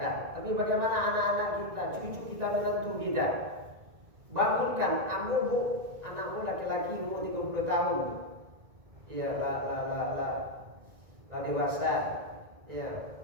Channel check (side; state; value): left; late; 1.9 ms